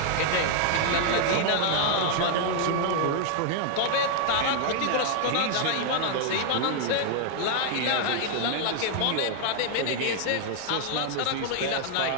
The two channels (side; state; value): both; different; correlation 0.00